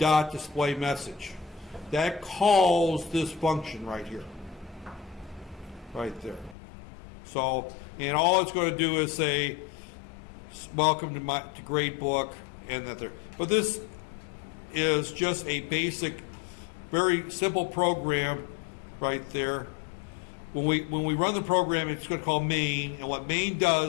display message. That calls this function right here, right there. So, and all it's going to do is say, welcome to gradebook, and that there. But this is just a basic, very simple program right there. When we run the program, it's going to call main, and what main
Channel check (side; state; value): right; drops out; at 6.6 s